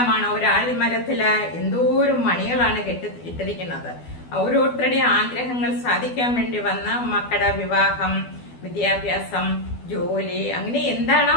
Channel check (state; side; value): late; right; 12 ms